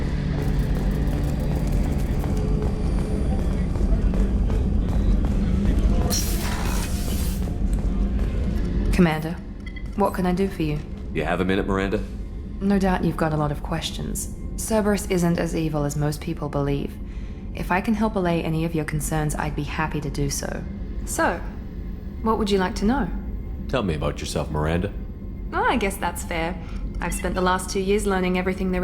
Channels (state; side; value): identical; both; correlation 1.00